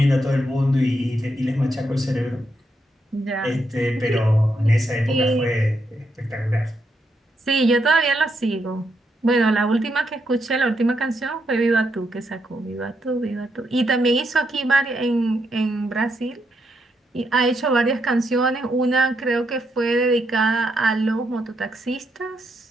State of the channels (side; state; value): both; normal; correlation 0.79